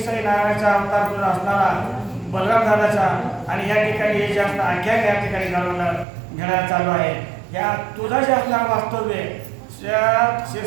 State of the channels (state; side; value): drops out; left; at 6.1 s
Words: नारायणाचा अवतार तुझा असणारा बलराम दादाचा आणि या ठिकाणी हे जे असणार आख्यान या ठिकाणी घडायला चालू आहे या तुझा जे असणारं वास्तव्य